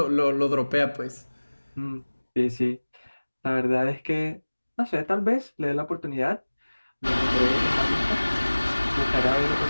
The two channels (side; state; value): both; inverted; correlation -1.00